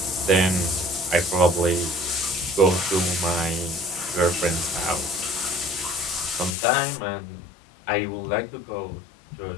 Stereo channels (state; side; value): drops out; right; at 6.6 s